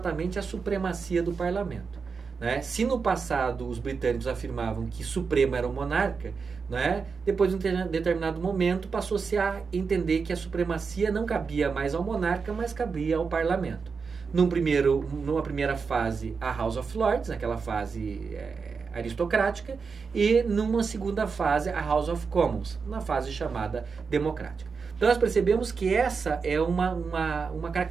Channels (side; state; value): left; quieter; 5.2 dB